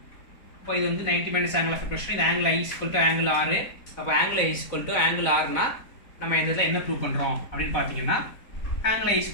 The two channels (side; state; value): right; late; 4.0 ms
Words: இப்போ இது வந்து 90 மைனஸ் ஆங்கிள் ஆஃப் ரிஃப்ளெக்ஷன், இது angle I equal to angle R. அப்போ angle I equal to angle Rனா நம்ம இந்த இதை என்ன ப்ரூவ் பண்ணுறோம் அப்படின்னு பார்த்தீங்கன்னா angle I